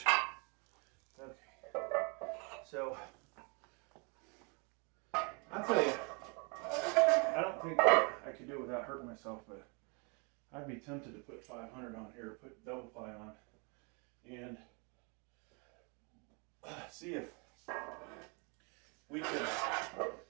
Okay, so I'll tell you, I don't think I could do it without hurting myself, but I'd be tempted to put 500 on here, put double ply on, and see if we could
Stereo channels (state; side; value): quieter; left; 33.7 dB